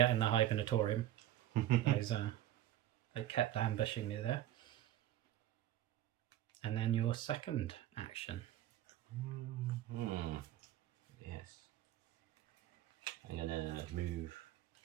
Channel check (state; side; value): quieter; left; 13.0 dB